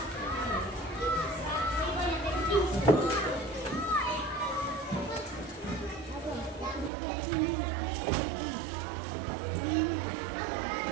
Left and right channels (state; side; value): drops out; left; at 6.9 s